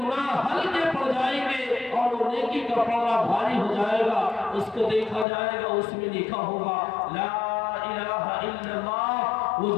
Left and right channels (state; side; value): drops out; right; at 5.2 s